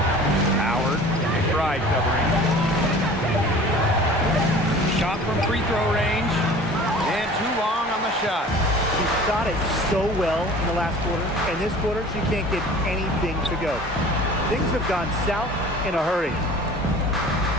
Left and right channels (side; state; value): both; normal; correlation 0.44